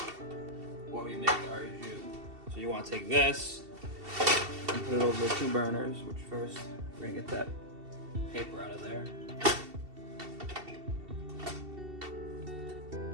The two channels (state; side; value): late; left; 2.7 ms